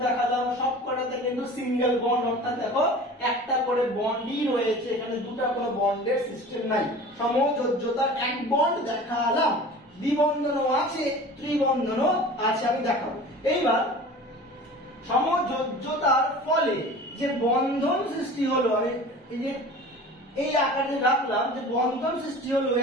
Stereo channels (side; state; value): both; normal; correlation 0.40